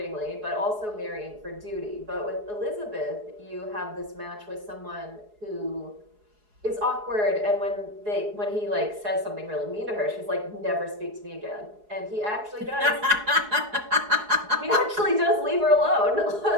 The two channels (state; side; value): late; left; 4.8 ms